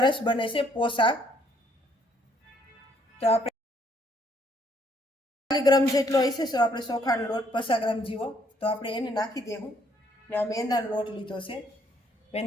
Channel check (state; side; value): normal; both; correlation 0.67